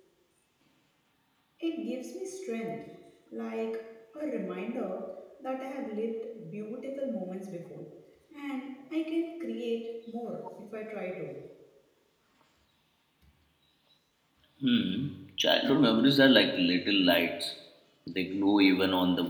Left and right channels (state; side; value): identical; both; correlation 1.00